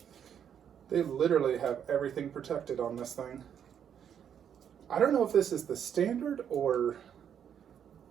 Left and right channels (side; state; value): left; quieter; 8.6 dB